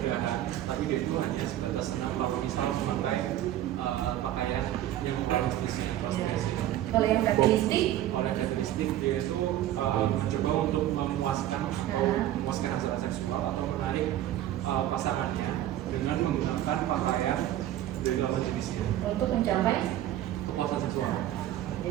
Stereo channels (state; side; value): quieter; left; 12.9 dB